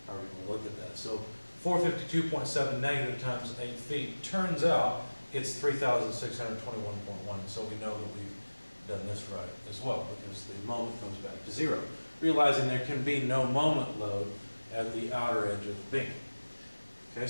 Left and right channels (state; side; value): inverted; both; correlation -1.00